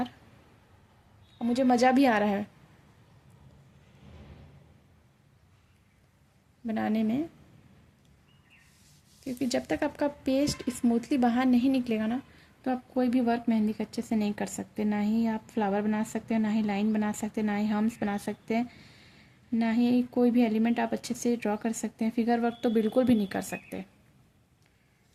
और मुझे मज़ा भी आ रहा है बनाने में, क्योंकि जब तक आपका पेस्ट स्मूथली बाहर नहीं निकलेगा ना, तो आप कोई भी वर्क मेहंदी का अच्छे से नहीं कर सकते। ना ही आप फ्लावर बना सकते हैं, ना ही लाइन बना सकते हैं, ना ही हम्स बना सकते हैं, ना ही कोई भी एलिमेंट आप अच्छे से ड्रॉ कर सकते हैं। फिगर वर्क तो बिल्कुल भी नहीं कर सकते।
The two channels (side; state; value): both; identical; correlation 1.00